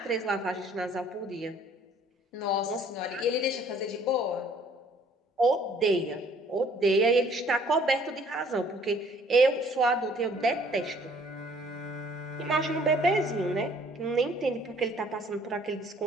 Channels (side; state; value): both; normal; correlation 0.58